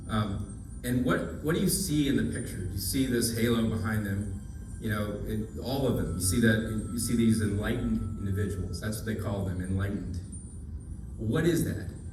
And what do you see in the picture? You see this halo behind them, all of them. You see these enlightened individuals. That's what they call them, enlightened. What is that?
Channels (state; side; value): identical; both; correlation 1.00